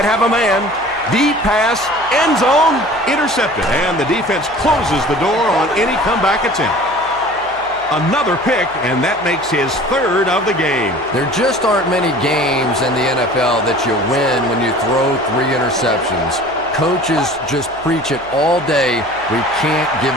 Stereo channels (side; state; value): right; noise; hum, 23 dB below the sound